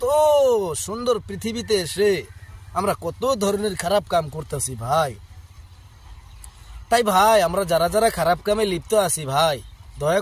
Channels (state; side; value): identical; both; correlation 1.00